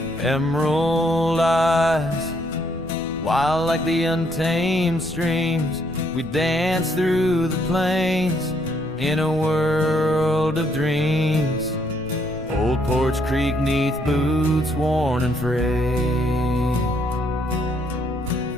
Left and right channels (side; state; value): left; noise; rumble, 16 dB below the sound